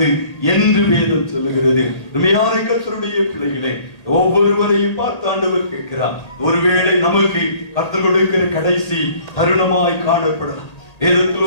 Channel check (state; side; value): late; right; 1.9 ms